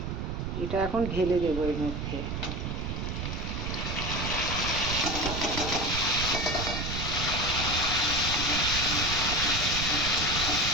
এটা এখন ঢেলে দেবো এর মধ্যে।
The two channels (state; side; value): noise; right; rumble, 3 dB below the sound